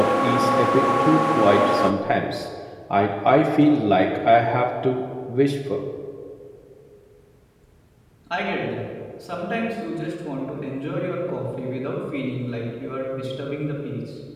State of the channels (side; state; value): both; identical; correlation 1.00